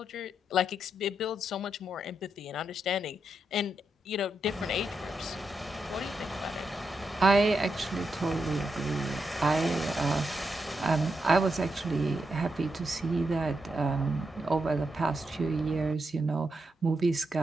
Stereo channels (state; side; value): normal; both; correlation 0.84